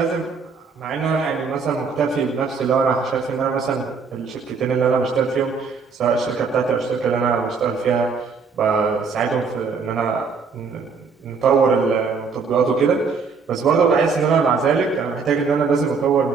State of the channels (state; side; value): quieter; left; 5.1 dB